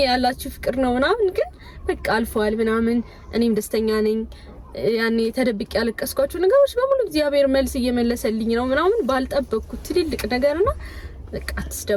ያላችሁ ፍቅር ነው ምናምን፣ ግን በቃ አልፏል ምናምን። እኔም ደስተኛ ነኝ። ያኔ ተደብቄ ያለቀስኳቸው ነገሮች በሙሉ እግዚአብሔር መልስ እየመለሰልኝ ነው ምናምን ባልጠበቅኩት ትልልቅ ነገርና በቃ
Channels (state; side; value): identical; both; correlation 1.00